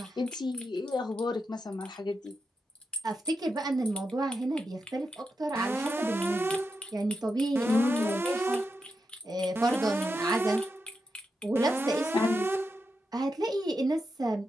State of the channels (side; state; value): both; normal; correlation 0.86